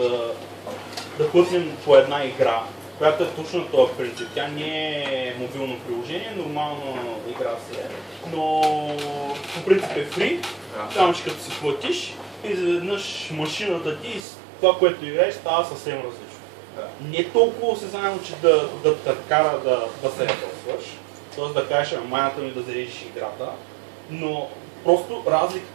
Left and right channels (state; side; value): drops out; left; at 14.2 s